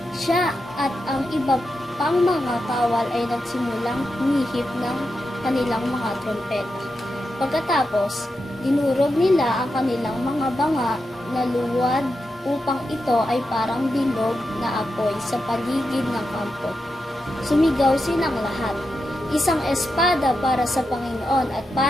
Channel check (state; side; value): normal; both; correlation 0.88